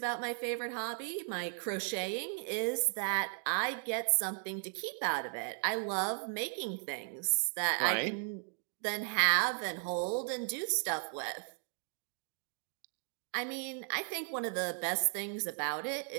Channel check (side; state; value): left; silent; 54 dB below the other